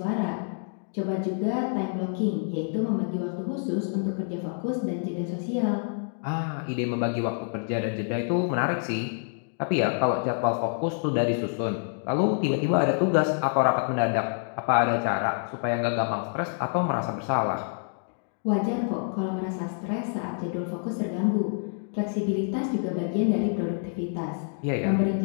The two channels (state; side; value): silent; right; digital silence